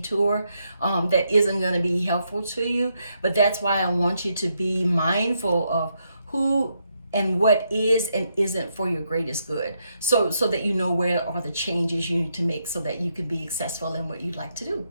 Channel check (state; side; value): inverted; both; correlation -0.79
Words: that isn't going to be helpful to you. But that's why I want you to be mindful of who and what is and isn't for your greatest good, so that you know where are the changes you need to make so that you can be successful in what you'd like to do.